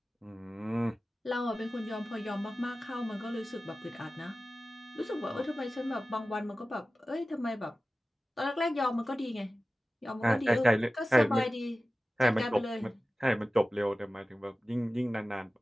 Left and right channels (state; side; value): normal; both; correlation 0.96